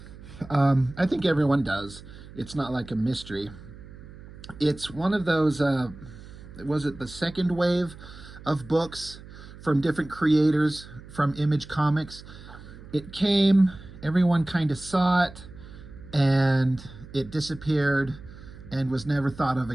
I think everyone does. It's not like a mystery. It's one of those, was it the second wave of books from different creators from Image Comics? It came, everyone kind of saw it, and it disappeared and was never thought of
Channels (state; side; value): noise; right; hum, 17 dB below the sound